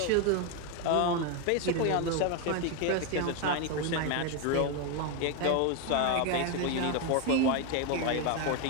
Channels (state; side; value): different; both; correlation 0.02